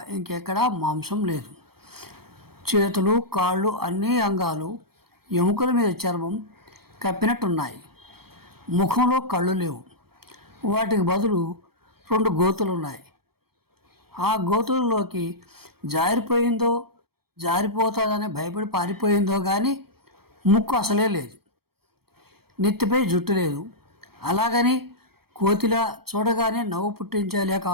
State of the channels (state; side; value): late; left; 0.95 ms